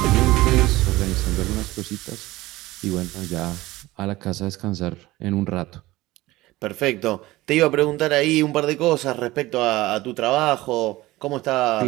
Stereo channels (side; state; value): left; quieter; 18.4 dB